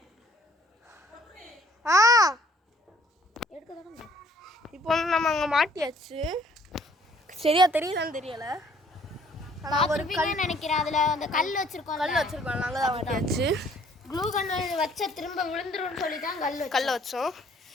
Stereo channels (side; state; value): both; normal; correlation 0.60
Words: இப்போ வந்து நம்ம அங்கே மாட்டியாச்சு. சரியா தெரியலன்னு தெரியல. ஒரு நினைக்கிறேன். அதில் அந்த கல் வச்சிருக்கோம். நாங்கள் தான் மாட்டியாச்சு. க்ளூ கன் வச்ச திரும்ப விழுந்துரும்னு சொல்லி தான் கல்லை வச்சோம்.